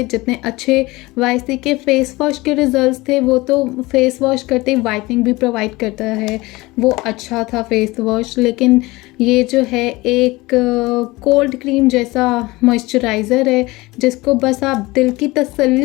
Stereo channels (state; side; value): quieter; right; 21.2 dB